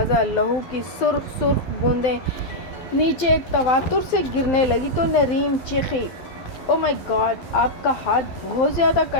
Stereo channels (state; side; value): late; right; 12 ms